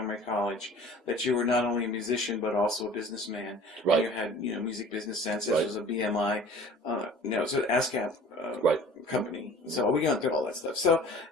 College that you were not only a musician but also a businessman. Right. You had music business sense. This Right. was a BMI, it's an ASCAP Right. company. So we got through all that stuff. So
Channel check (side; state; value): both; normal; correlation 0.45